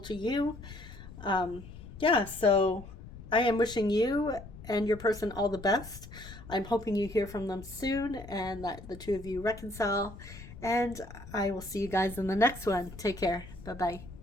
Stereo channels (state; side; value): noise; left; rumble, 15 dB below the sound